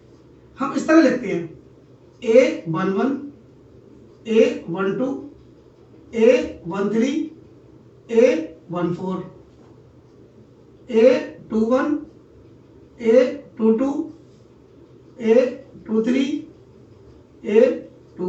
हम इस तरह लिखते हैं A11 A12 A13 A14 A21 A22 A23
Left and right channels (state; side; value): identical; both; correlation 1.00